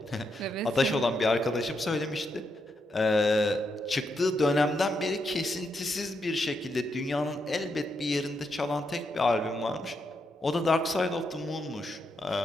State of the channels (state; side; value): normal; both; correlation 0.81